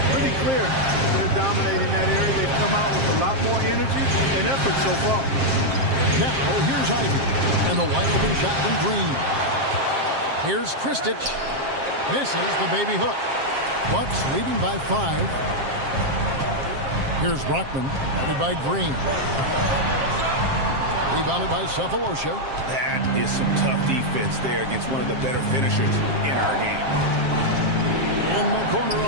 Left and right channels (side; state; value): left; late; 7.5 ms